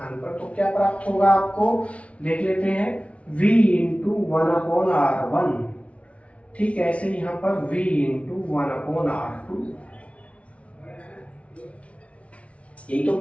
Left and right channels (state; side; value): late; right; 0.063 ms